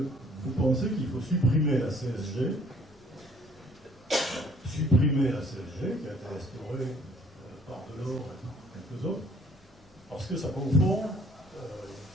vous pensez qu'il faut supprimer la CSG, qui a été restaurée par Delors et quelques autres, parce que ça confond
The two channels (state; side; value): normal; both; correlation 0.58